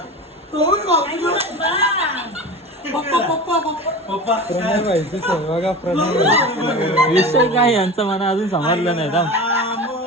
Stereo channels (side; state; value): both; normal; correlation 0.31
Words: विषय काय यांचं मला अजून समजलं नाही.